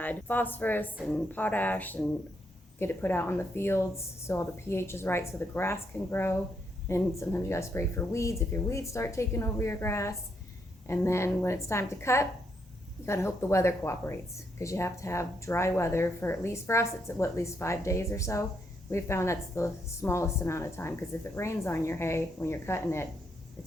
phosphorus and potash and get it put out on the fields so all the pH is right so the grass can grow. And sometimes you gotta spray for weeds if your weeds start taking over your grass. And then when it's time to cut, you gotta hope the weather cooperates because you have to have dry weather for us, it's at least 5 days or so. We've found that's the smallest amount of time because if it rains on your hay when you're cutting it,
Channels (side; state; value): both; normal; correlation 0.77